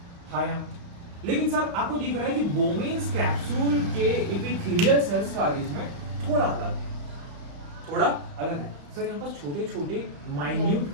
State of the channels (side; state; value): left; late; 35 ms